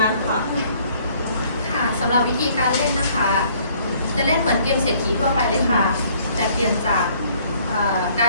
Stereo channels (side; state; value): both; inverted; correlation -0.60